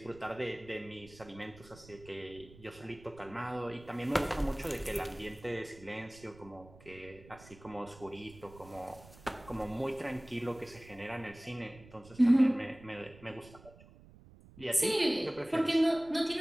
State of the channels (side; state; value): right; noise; rumble, 21 dB below the sound